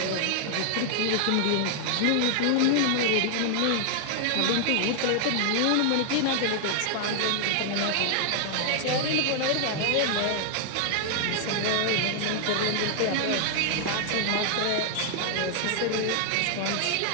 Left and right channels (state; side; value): different; both; correlation 0.00